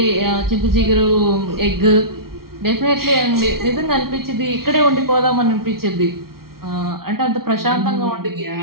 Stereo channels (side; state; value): left; late; 0.94 ms